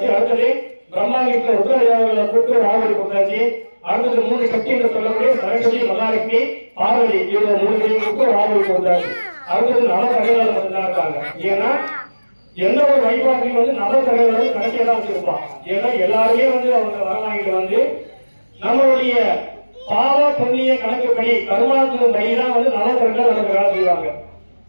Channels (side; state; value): both; inverted; correlation -1.00